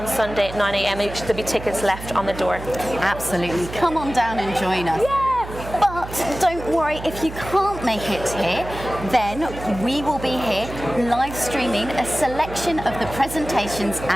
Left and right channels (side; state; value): right; noise; hum, 11 dB below the sound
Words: Sunday at 9 a.m. There'll be tickets left on the door. Absolutely. Come on down and join us. Yeah! But But don't worry, if you can't make it here, then we will be here live streaming a selection of the presentations